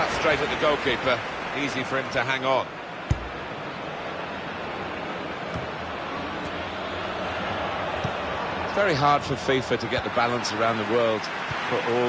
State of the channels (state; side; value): identical; both; correlation 1.00